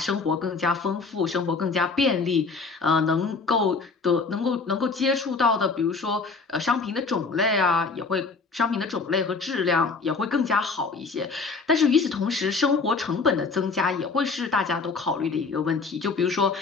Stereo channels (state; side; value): quieter; right; 4.4 dB